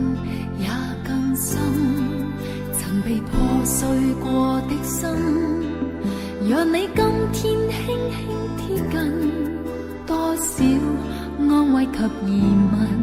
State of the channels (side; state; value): both; identical; correlation 1.00